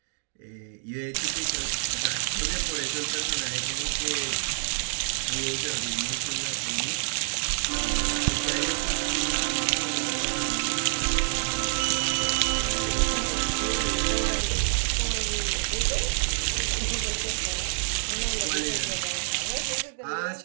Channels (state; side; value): silent; left; digital silence